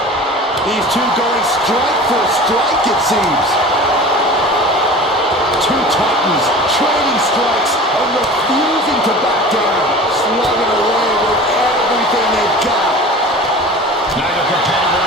These two going strike for strike, it seems. Two titans trading strikes and refusing to back down. Slugging away with everything they've got. Neither competitor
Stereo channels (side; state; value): both; normal; correlation 0.38